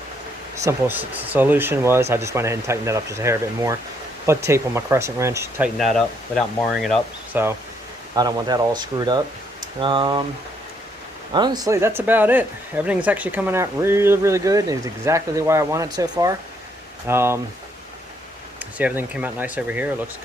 Simple solution was I just went ahead and tightened that up just a hair bit more. Put tape on my crescent wrench, tighten that up without marring it up. So I don't want that all screwed up. Honestly, that's about it. Everything's actually coming out really, really good. It's exactly the way I want it so far. See, everything came out nice over here. It looks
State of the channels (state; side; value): normal; both; correlation 0.71